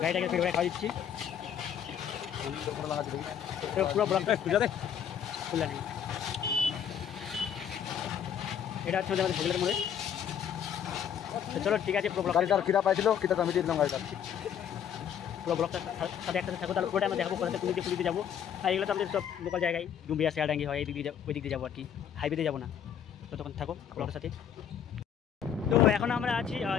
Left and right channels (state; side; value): quieter; right; 8.7 dB